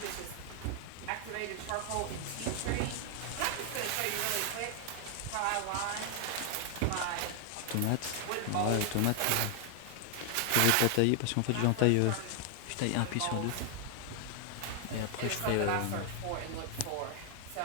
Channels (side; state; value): both; different; correlation 0.00